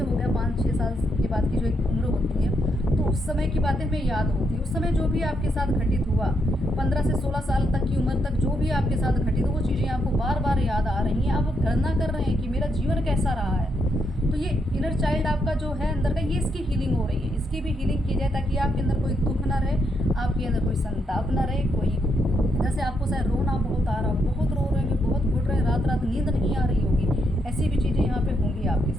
गया 5-6 साल के बाद की जो एक उम्र होती है, तो उस समय की बातें हमें याद होती है। उस समय जो भी आपके साथ घटित हुआ, 15 से 16 साल तक की उम्र तक जो भी आपके साथ घटित हो, वो चीज़ें आपको बार बार याद आ रही हैं। आप गणना कर रहे हैं कि मेरा जीवन कैसा रहा है। तो ये इनर चाइल्ड आपका जो है अंदर का, ये इसकी हीलिंग हो रही है, इसकी भी हीलिंग की जाए, ताकि आपके अंदर कोई दुख ना रहे, आपके अंदर कोई संताप ना रहे, कोई जैसे आपको शायद रोना बहुत आ रहा हो, बहुत रो रहे हैं, बहुत घुट रहे हैं, रात रात नींद नहीं आ रही होगी, ऐसी भी चीज़ें यहाँ पे होंगी आपके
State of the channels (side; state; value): both; normal; correlation 0.78